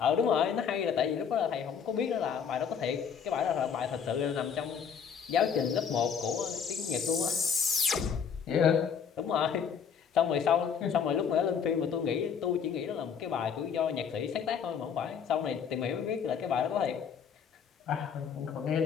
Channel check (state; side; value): quieter; right; 7.1 dB